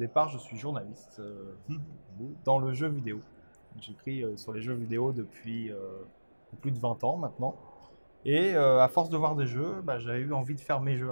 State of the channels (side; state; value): both; inverted; correlation -1.00